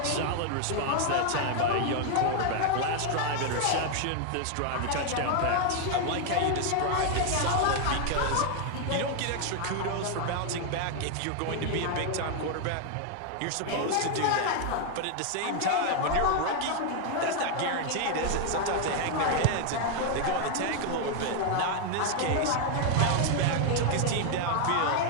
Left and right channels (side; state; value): both; different; correlation 0.00